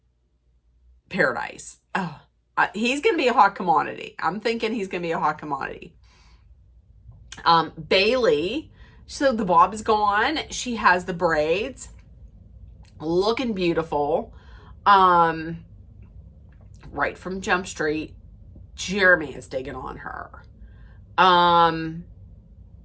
Paradise. Oh, he's going to be a hot commodity. I'm thinking he's going to be a hot commodity. Bailey, so the bob is gone. She has the braids, looking beautiful. Right from Jump Street. Jeremy is digging on her.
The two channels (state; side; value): identical; both; correlation 1.00